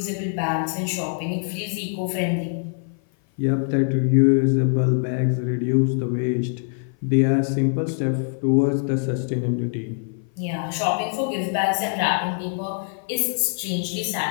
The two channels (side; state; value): right; silent; 56 dB below the other